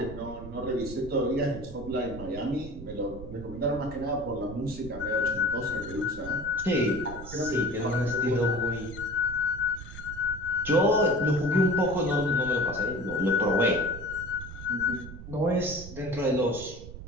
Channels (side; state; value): right; noise; rumble, 12 dB below the sound